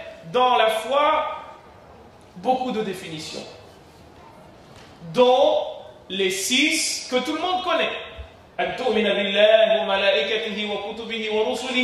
dans la foi beaucoup de définitions, dont les 6 que tout le monde connaît. أن تؤمن بالله وملائكته وكتبه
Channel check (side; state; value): both; identical; correlation 1.00